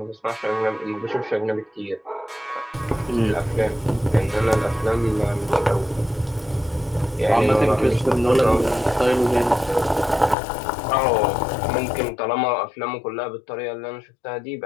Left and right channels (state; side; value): drops out; right; at 10.4 s